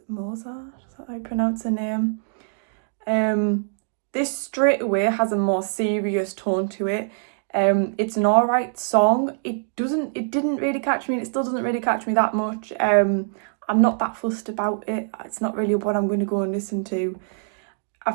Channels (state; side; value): silent; left; digital silence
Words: Mozart, is that how you pronounce her name? This straight away has a more serious tone to it. It's an alright song. It didn't really catch me, and it still doesn't really catch me that much. I'm not that fussed about it. It's not really what I'm going to go and listen to. I